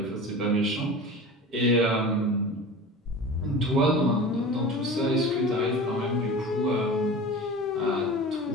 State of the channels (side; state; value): both; normal; correlation 0.35